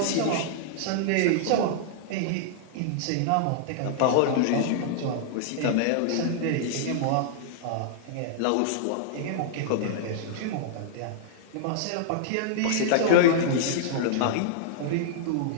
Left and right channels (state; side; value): different; both; correlation -0.01